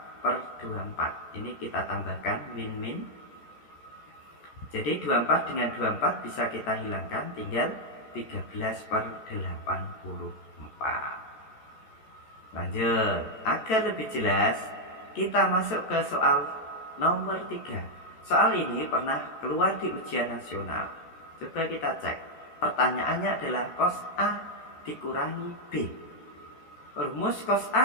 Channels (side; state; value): right; late; 14 ms